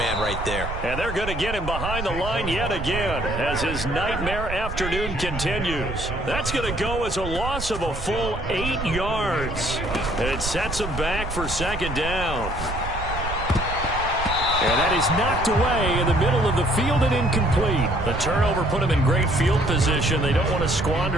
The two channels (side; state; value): right; noise; rumble, 6 dB below the sound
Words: right there. And they're going to get him behind the line yet again as his nightmare afternoon continues. That's going to go as a loss of a full 8 yards. It sets him back for 2nd down. And that is knocked away in the middle of the field and incomplete. The turnover put them in great field position. They don't want to